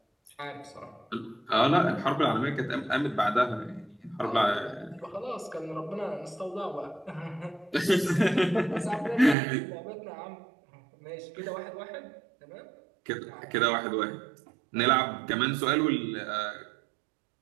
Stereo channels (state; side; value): drops out; left; at 9.3 s